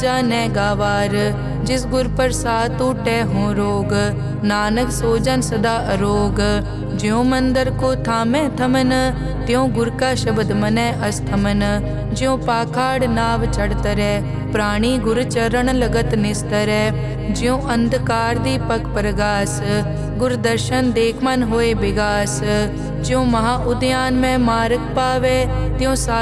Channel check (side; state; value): both; identical; correlation 1.00